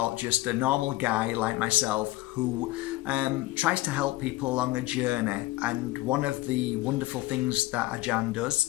just a normal guy like myself who tries to help people along a journey. And one of the wonderful things that Ajahn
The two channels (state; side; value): quieter; right; 18.1 dB